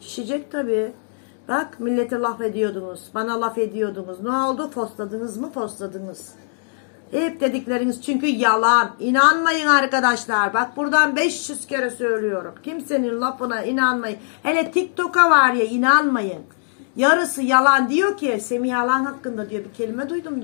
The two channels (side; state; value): right; silent; digital silence